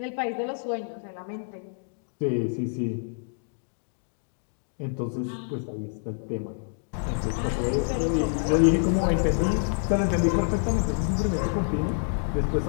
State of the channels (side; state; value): right; silent; 58 dB below the other